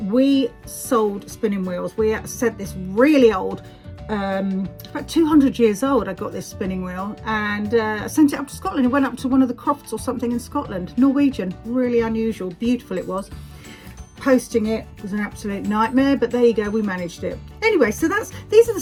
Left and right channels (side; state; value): both; identical; correlation 1.00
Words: sold spinning wheels. We said this really old, about 200 years old, I got this spinning wheel, and I sent it up to Scotland. It went up to one of the crofts or something in Scotland, Norwegian, really unusual, beautiful it was. Posting it was an absolute nightmare, but there you go, we managed it. Anyway, so these are the